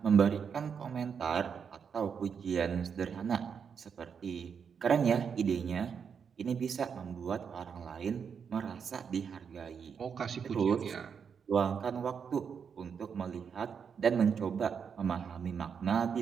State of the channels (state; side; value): quieter; left; 6.7 dB